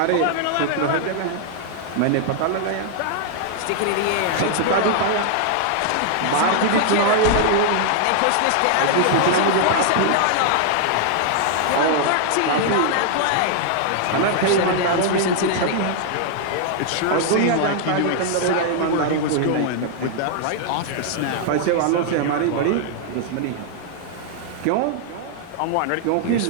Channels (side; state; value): both; different; correlation 0.00